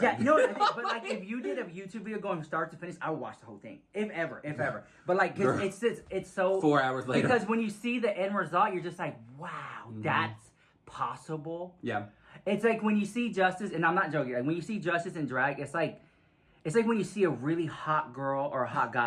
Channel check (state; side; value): identical; both; correlation 1.00